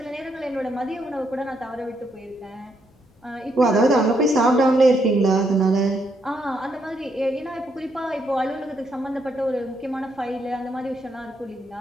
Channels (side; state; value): both; normal; correlation 0.76